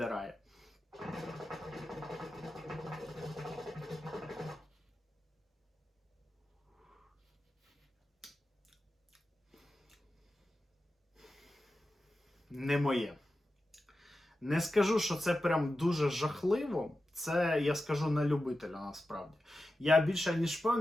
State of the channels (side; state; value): both; normal; correlation 0.92